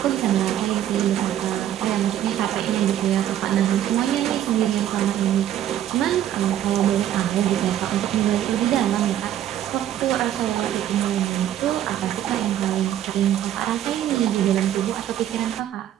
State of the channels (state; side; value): quieter; left; 11.4 dB